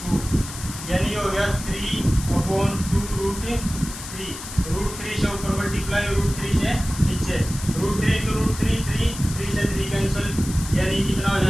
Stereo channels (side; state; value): left; noise; hiss, 11 dB below the sound